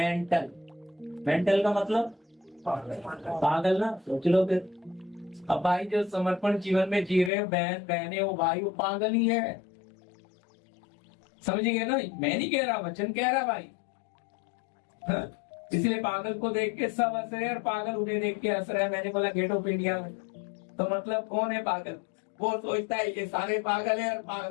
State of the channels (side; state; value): right; drops out; at 7.3 s